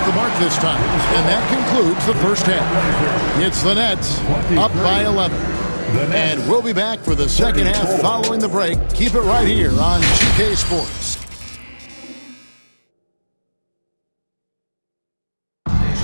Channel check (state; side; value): inverted; both; correlation -1.00